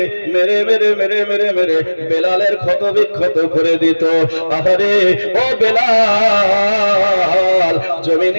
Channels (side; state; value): both; inverted; correlation -1.00